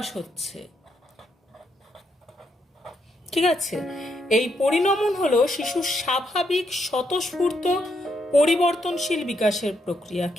হচ্ছে। ঠিক আছে? এই পরিণমন হলো শিশুর স্বাভাবিক স্বতঃস্ফূর্ত পরিবর্তনশীল বিকাশের প্রক্রিয়া।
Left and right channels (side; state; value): both; normal; correlation 0.78